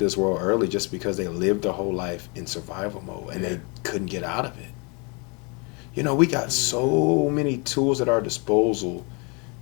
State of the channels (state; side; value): quieter; right; 31.6 dB